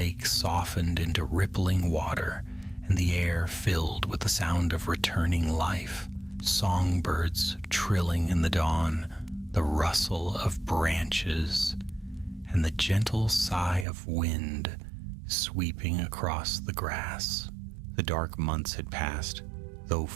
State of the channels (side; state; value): left; drops out; at 13.9 s